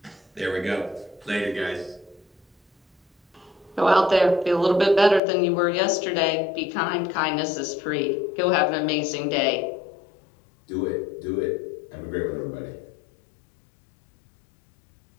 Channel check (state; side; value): drops out; right; at 5.2 s